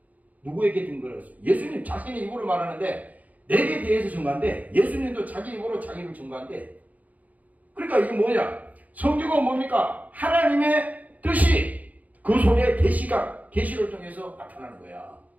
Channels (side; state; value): left; late; 0.076 ms